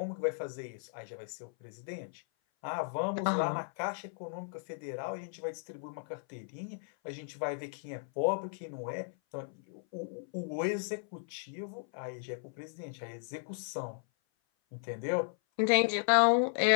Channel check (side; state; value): right; silent; 54 dB below the other